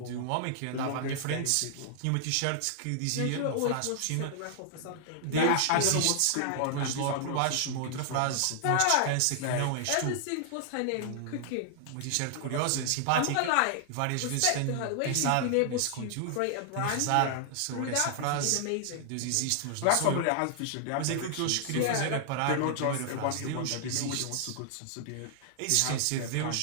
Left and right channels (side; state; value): both; different; correlation 0.00